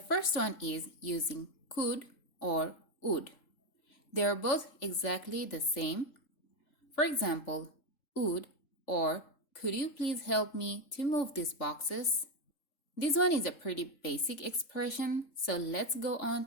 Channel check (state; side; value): late; right; 3.7 ms